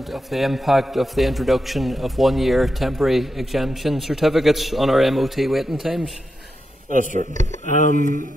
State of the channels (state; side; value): normal; both; correlation 0.86